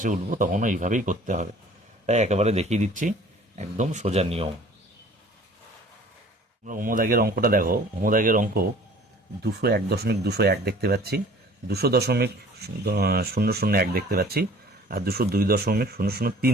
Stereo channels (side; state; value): both; normal; correlation 0.50